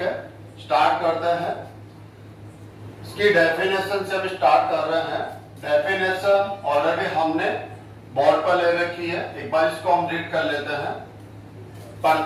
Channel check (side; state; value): both; identical; correlation 1.00